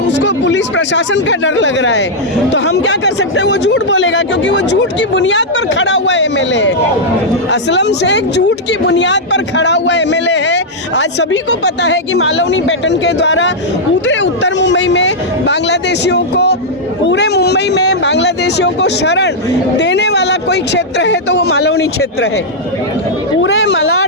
पुलिस प्रशासन का डर लग रहा है, तो हम क्या कर सकते हैं? वो झूठ बोलेगा, क्योंकि वो झूठ की बुनियाद पर खड़ा हुआ एमएलए है। असलम शेख झूठ की बुनियाद पर खड़ा हुआ एमएलए है। आज सभी को पता है कि मालवनी पैटर्न के द्वारा पूरे उत्तर मुंबई में बांग्लादेशियों को, पूरे मुंबई में बांग्लादेशियों को शरण देने वाला कोई क्षेत्र है तो वो मालवनी क्षेत्र है। पूरे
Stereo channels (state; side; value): normal; both; correlation -0.05